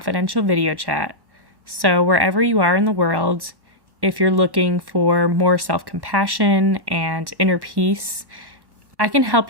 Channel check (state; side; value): late; left; 1.1 ms